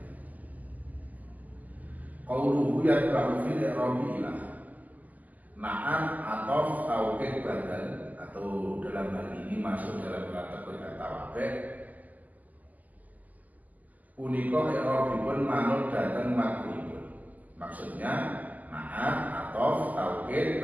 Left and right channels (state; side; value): late; left; 0.080 ms